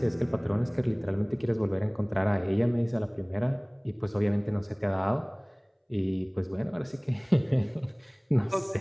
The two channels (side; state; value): both; identical; correlation 1.00